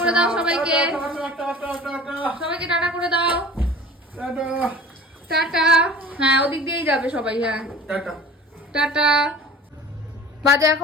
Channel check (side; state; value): both; normal; correlation 0.41